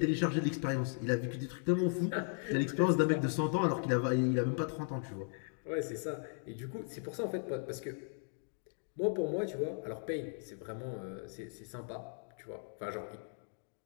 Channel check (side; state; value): right; silent; 53 dB below the other